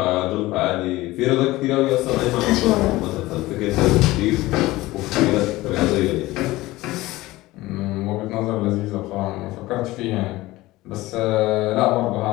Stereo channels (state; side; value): quieter; right; 18.6 dB